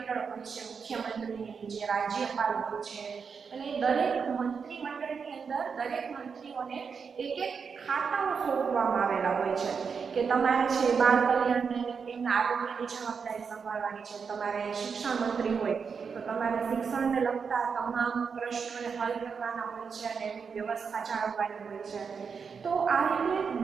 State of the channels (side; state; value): left; quieter; 5.9 dB